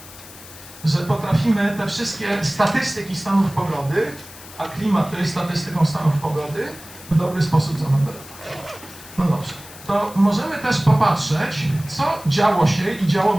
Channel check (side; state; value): left; noise; hiss, 18 dB below the sound